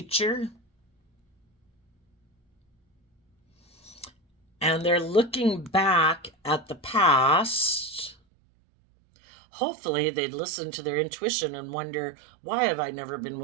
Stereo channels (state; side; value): drops out; left; at 8.2 s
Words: and they're looking back at the past. Hopefully they'd listen to their intuition and wonder, why have I never been